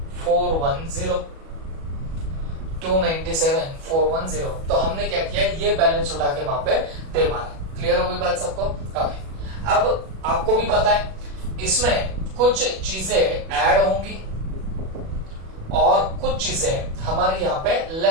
297,410। तो हमने क्या किया, ये बैलेंस उठा के वहां पे दे मारा। क्लियर हो गई बात सबको? ओके, अब आपको भी पता है इसमें कुछ चीजें ऐड होंगी और कुछ चीजें हमारी यहाँ पे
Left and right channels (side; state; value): left; late; 37 ms